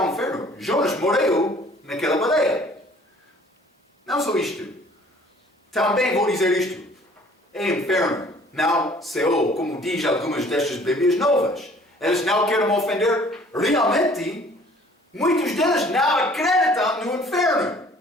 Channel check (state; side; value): normal; both; correlation 0.54